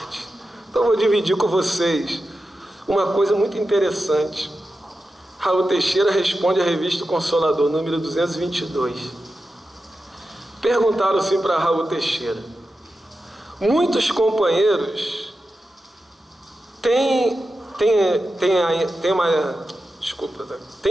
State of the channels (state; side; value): normal; both; correlation 0.91